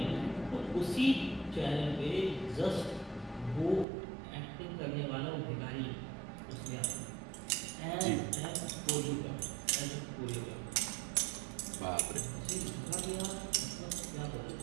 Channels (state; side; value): drops out; left; at 3.9 s